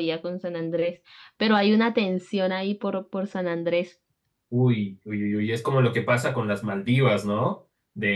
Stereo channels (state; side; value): identical; both; correlation 1.00